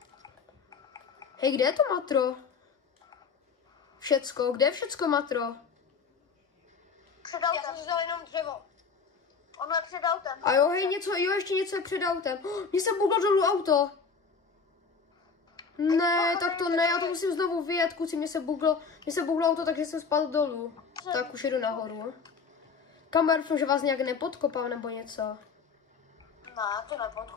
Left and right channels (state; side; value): quieter; right; 5.3 dB